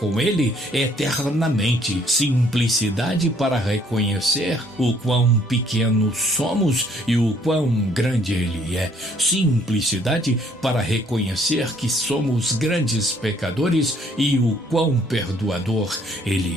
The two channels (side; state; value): both; normal; correlation 0.63